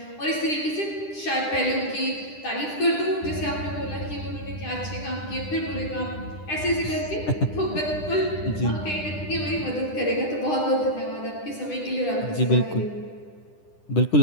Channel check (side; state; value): right; late; 10 ms